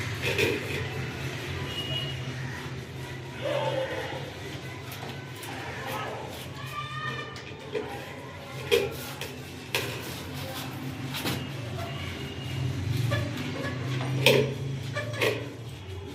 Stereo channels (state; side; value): identical; both; correlation 1.00